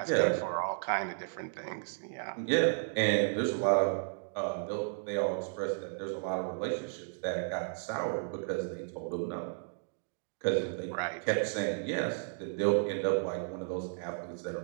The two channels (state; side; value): silent; left; digital silence